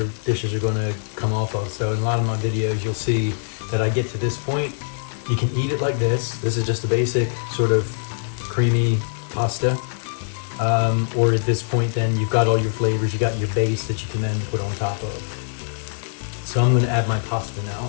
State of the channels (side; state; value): right; silent; digital silence